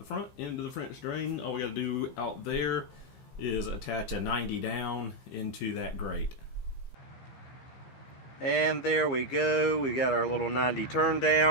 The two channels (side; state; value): right; late; 15 ms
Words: front into the French drain. All we got to do out there is attach a 90 down into that grate. And there we go. We got our little 90 turn